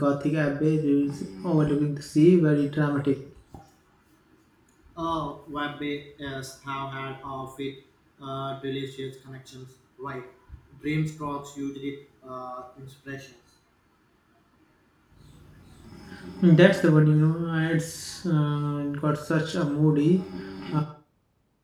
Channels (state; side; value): identical; both; correlation 1.00